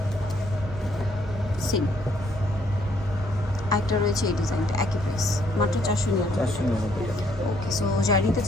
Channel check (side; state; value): both; normal; correlation 0.68